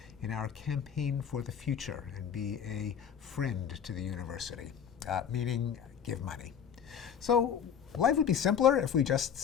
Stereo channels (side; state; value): right; quieter; 8.0 dB